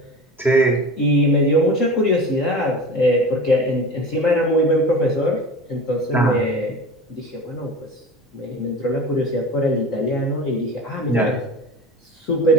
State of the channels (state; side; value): normal; both; correlation 0.34